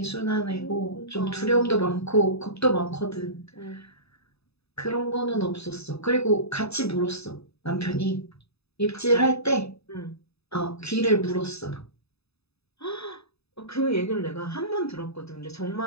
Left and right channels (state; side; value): late; right; 0.79 ms